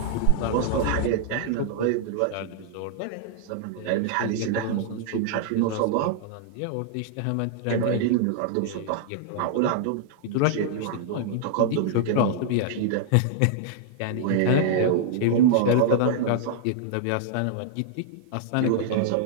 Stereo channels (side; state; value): both; different; correlation -0.01